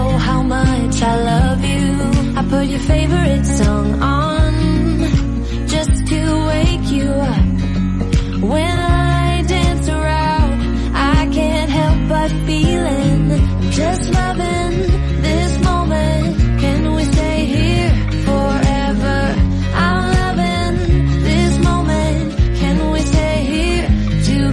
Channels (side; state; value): both; identical; correlation 1.00